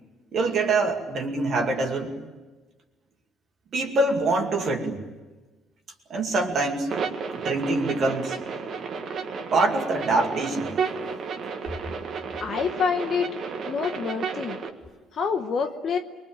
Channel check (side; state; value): both; normal; correlation 0.67